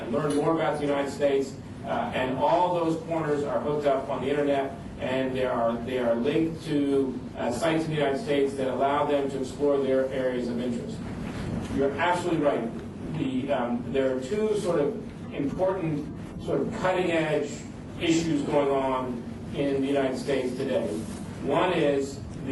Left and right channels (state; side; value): identical; both; correlation 1.00